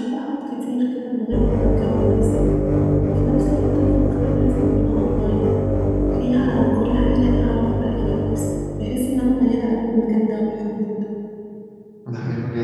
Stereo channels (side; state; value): both; identical; correlation 1.00